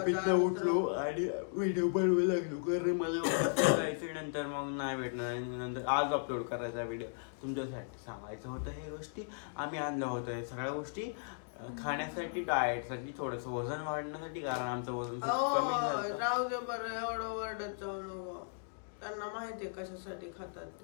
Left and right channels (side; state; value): right; silent; digital silence